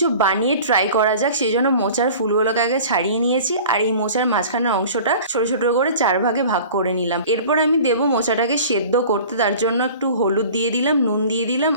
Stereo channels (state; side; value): inverted; both; correlation -0.42